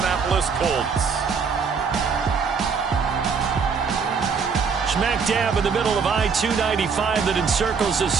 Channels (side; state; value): left; quieter; 5.7 dB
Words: Colts. Smack dab in the middle of I-295 that encircles the